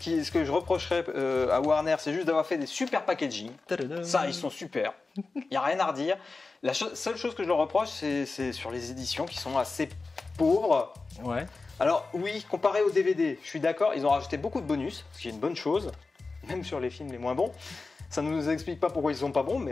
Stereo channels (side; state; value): right; quieter; 3.9 dB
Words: que je reprocherais à Warner, c'est juste d'avoir fait des super packaging. Ça, ils sont super. Il n'y a rien à redire. La seule chose que je leur reproche, c'est sur les éditions qui sont assez pauvres. Ouais. Alors oui, comparé aux DVD, je suis d'accord, ils ont rajouté beaucoup de bonus, ce qui est une bonne chose, même sur les films les moins bons. Ça ne nous explique pas pourquoi ils sont pas bons,